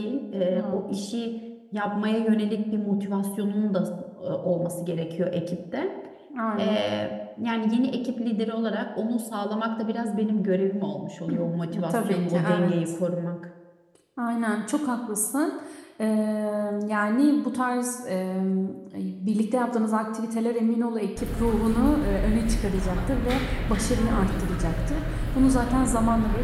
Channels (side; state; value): both; identical; correlation 1.00